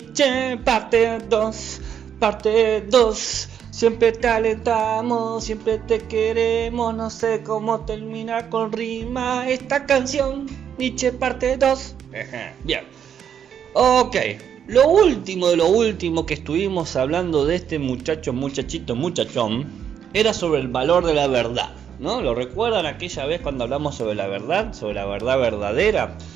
parte 2, parte 2. Siempre te alentamos, siempre te queremos, no sé cómo terminar con rima esta canción, Nietzsche parte 2. Bien, ok, lo último de lo último que estuvimos hablando de este muchachón, era sobre el valor de la verdad, ¿no? ¿Lo recuerdan aquella vez cuando hablamos sobre la verdad verdadera?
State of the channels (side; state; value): left; quieter; 8.5 dB